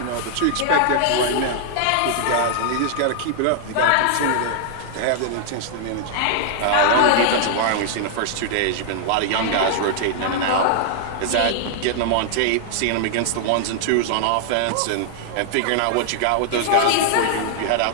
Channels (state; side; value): different; both; correlation -0.01